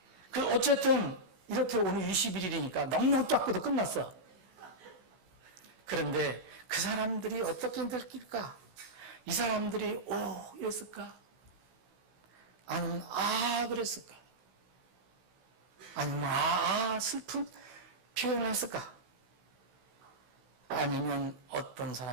어쨌든 이렇게 오늘 21일이니까 넉넉 닦고도 끝났어. 그런데 그 사람들이 어떻게 느낄까? 이 사람들이 이랬을까? 아니면 그랬을까? 아니면 슬픈 표현을 했을까? 아니면 어떤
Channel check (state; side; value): late; left; 16 ms